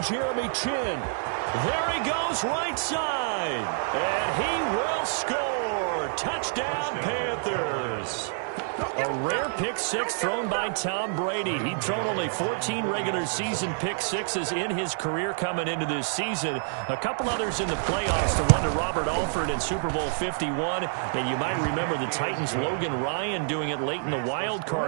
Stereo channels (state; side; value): silent; left; 60 dB below the other